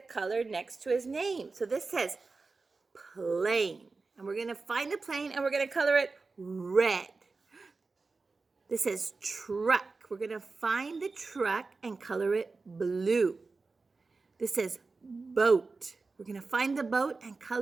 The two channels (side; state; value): left; quieter; 4.0 dB